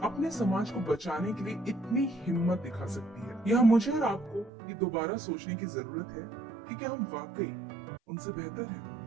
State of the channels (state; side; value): drops out; left; at 4.5 s